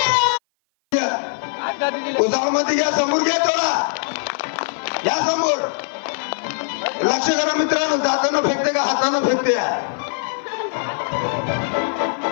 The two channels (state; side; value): silent; right; 56 dB below the other